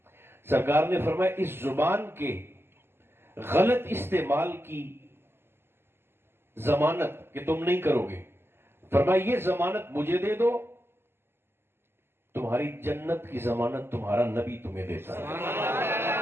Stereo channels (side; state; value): left; late; 0.12 ms